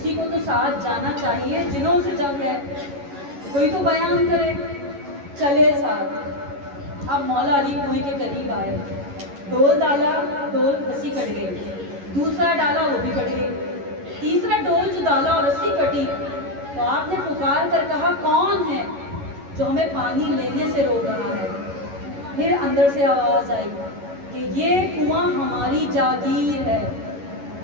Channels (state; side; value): late; left; 11 ms